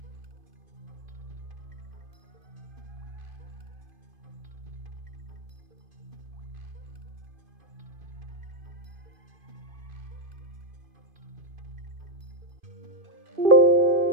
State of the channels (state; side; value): late; left; 2.5 ms